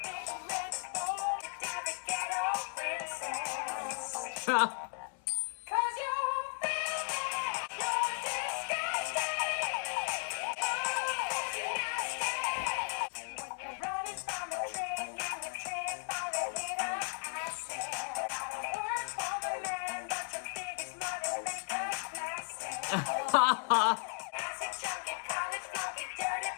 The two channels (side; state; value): right; silent; 54 dB below the other